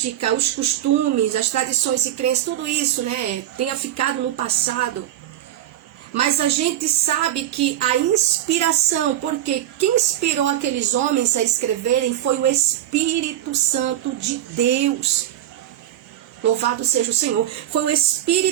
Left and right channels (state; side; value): quieter; left; 12.5 dB